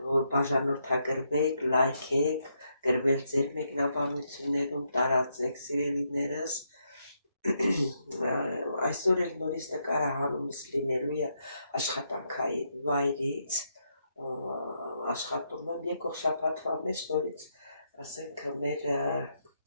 որ բաժանորդագրվեք, լայքեք, գրվել ձեր մեկնաբանություններում, տարածեք սիրելիներս։ Այսօր էլ նորից նկարահանումս լինելու է աշխատանքային վայրից, աշխատում եմ եկող շաբաթվա մեջ նորից, ասենք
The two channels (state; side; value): inverted; both; correlation -0.79